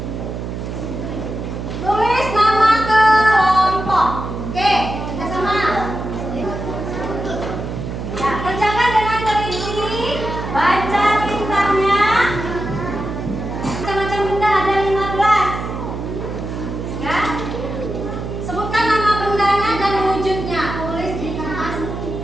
Tulis nama kelompok. Oke, kita sama. Ya, kerjakan dengan teliti. Baca tintanya. Macam-macam benda ada 15. Ya. Sebutkan nama bendanya dan wujudnya. Tulis di kertas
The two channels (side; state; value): right; noise; hum, 6 dB below the sound